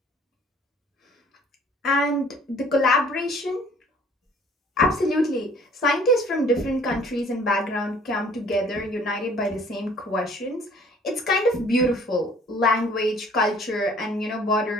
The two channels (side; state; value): both; normal; correlation 0.55